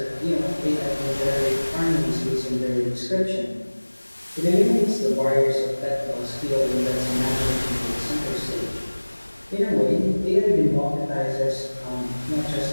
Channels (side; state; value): both; inverted; correlation -1.00